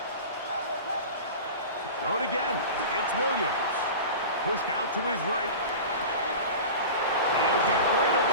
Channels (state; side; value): inverted; both; correlation -0.33